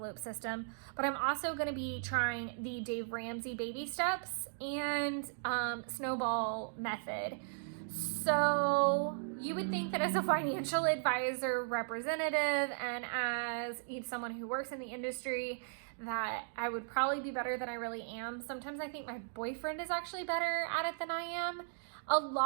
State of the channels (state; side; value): silent; left; digital silence